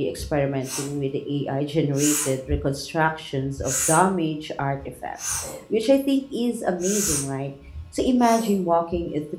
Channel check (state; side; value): identical; both; correlation 1.00